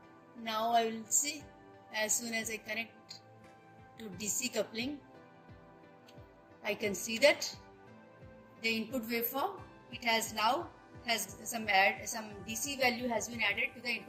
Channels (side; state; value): both; identical; correlation 1.00